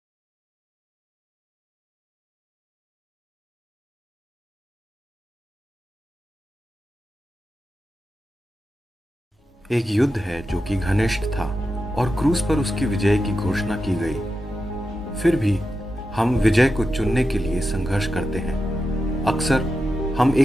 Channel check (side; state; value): both; normal; correlation 0.89